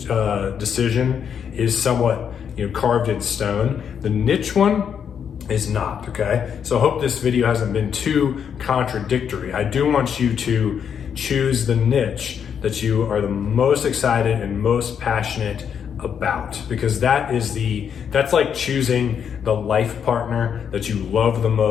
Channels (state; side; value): quieter; right; 7.8 dB